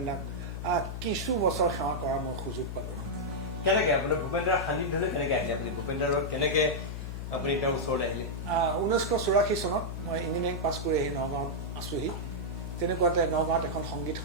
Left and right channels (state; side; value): noise; left; hum, 6 dB below the sound